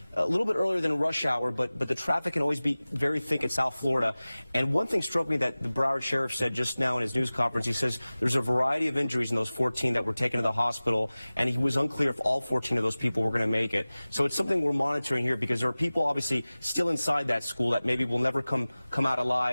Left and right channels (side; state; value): both; inverted; correlation -0.98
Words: a little bit earlier than rush hour, but the traffic can always be very thick in South Florida. And one thing struck me that the Broward Sheriff said just now in his news conference. He says there's a variety of injuries in those 14 that were taken to the hospital, and he was unclear if all 14 of those people were going to make it. So it's something we're monitoring here, because there are people obviously still inside that school that maybe will never come out